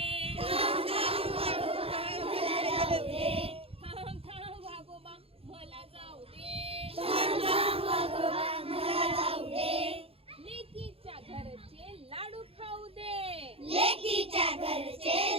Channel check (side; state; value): left; late; 0.28 ms